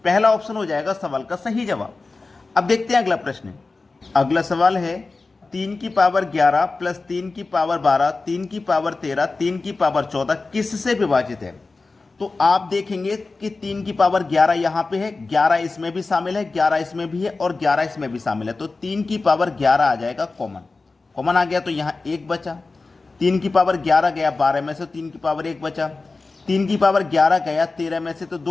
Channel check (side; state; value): right; quieter; 3.7 dB